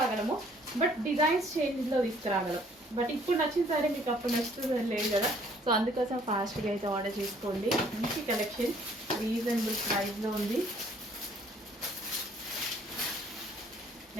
బట్ డిజైన్స్ చేంజ్లో తీసుకురాగలం. బట్ ఇప్పుడు నచ్చిన శారీ మీకు అప్పుడు నచ్చుతుందని లేదు కదా, సో అందుకోసం ఫాస్ట్గా అయితే ఆర్డర్ చేసుకోండి. మంచి కలెక్షన్, రీజనబుల్ ప్రైస్లో ఉంది.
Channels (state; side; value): normal; both; correlation 0.60